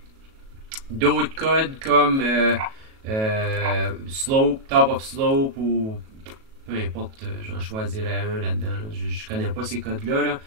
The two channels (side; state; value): left; late; 37 ms